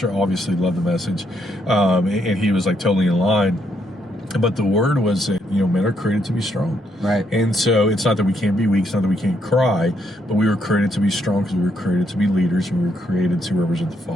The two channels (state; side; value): normal; both; correlation 0.75